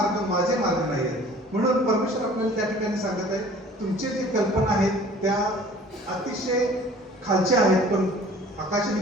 माझे मार्ग नाहीयेत. म्हणून परमेश्वर आपल्याला त्या ठिकाणी सांगत आहे, तुमचे जे कल्पना आहेत त्या अतिशय खालच्या आहेत, पण आकाश आणि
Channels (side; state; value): both; normal; correlation 0.49